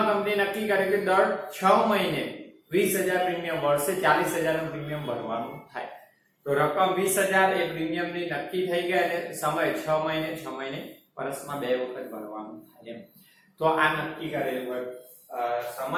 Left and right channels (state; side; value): identical; both; correlation 1.00